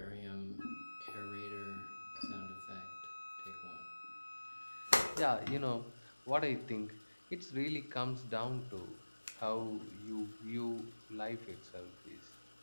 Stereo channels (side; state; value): both; inverted; correlation -1.00